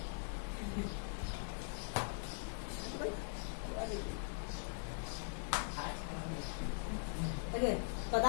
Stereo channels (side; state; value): right; silent; digital silence